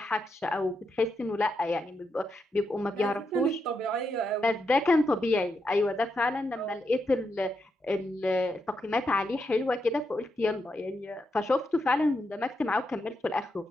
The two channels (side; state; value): both; normal; correlation 0.83